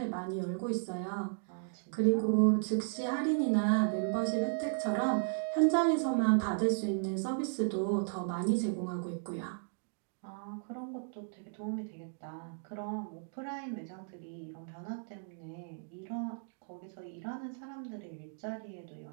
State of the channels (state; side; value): silent; left; digital silence